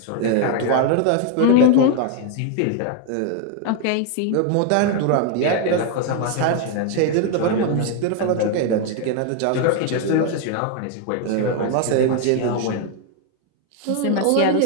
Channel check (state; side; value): different; both; correlation 0.00